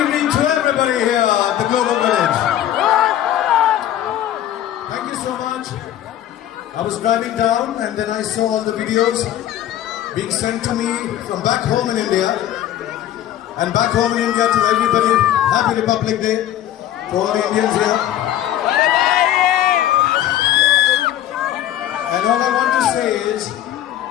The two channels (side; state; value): right; quieter; 12.2 dB